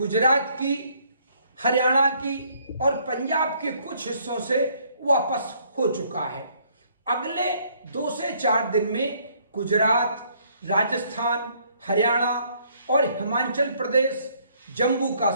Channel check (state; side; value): inverted; both; correlation -0.65